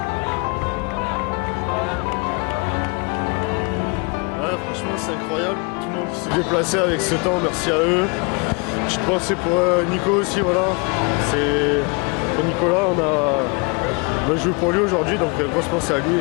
Ouais, franchement, c'est incroyable. Tout le monde qui s'est déplacé avec ce temps, merci à eux. Petite pensée pour Nico aussi, voilà. C'est pour Nicolas, on a joué pour lui aujourd'hui, donc grosse pensée à lui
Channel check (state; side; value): quieter; right; 31.6 dB